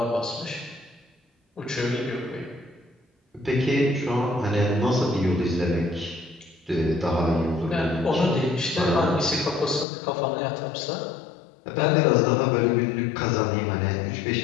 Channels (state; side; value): drops out; right; at 9.9 s